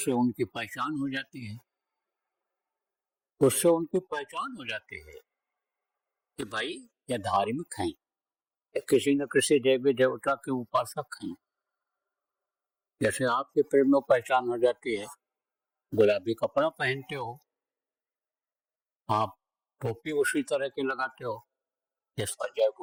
उनकी पहचान हो जाती है। उससे उनकी पहचान हो जाती है कि भाई ये धार्मिक हैं, ये किसी न किसी देवी देवता के उपासक हैं। जैसे आपके प्रेम में पहचान हो जाती है, गुलाबी कपड़ा पहनते हो, आप टोपी उसी तरह की लगाते हो जिस पर जय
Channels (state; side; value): identical; both; correlation 1.00